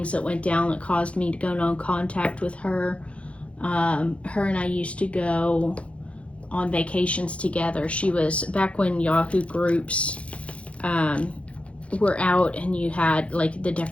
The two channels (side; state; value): right; late; 0.062 ms